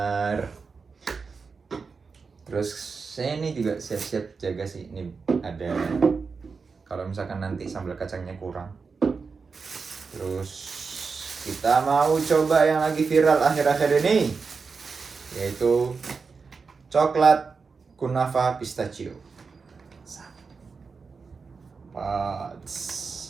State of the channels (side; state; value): left; quieter; 4.9 dB